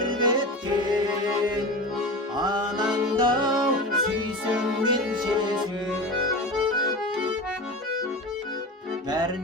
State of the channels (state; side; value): normal; both; correlation 0.28